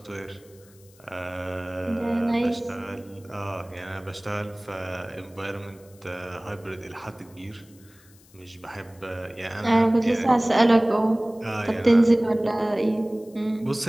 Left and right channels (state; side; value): noise; left; hiss, 28 dB below the sound